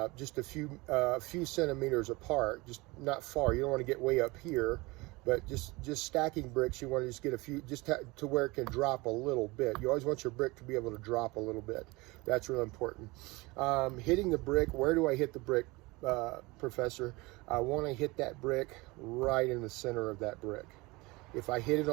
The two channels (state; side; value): quieter; left; 23.3 dB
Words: just a few centimeters apart, just not far. You don't want to get way up here, but just stacking bricks, you want to just get a few, to where it can drop a little bit. You always want your brick to be able to drop a little bit. That's really important. Hitting the brick, where do I hit the brick, Professor? I want to hit that brick right in the center of that brick. If I hit it